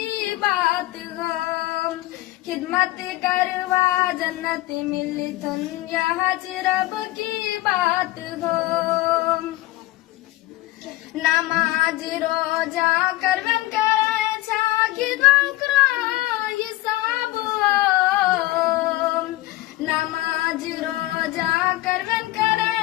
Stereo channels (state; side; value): quieter; right; 18.0 dB